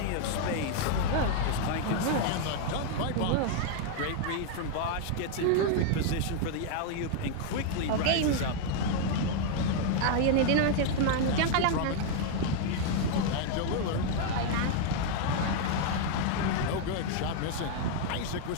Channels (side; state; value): both; different; correlation 0.00